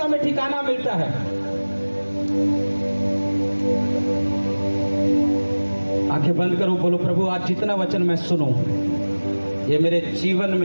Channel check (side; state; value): both; inverted; correlation -1.00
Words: में ठिकाना मिलता है। आंखें बंद करो, बोलो प्रभु आज जितना वचन मैं सुनूं ये मेरे जीवन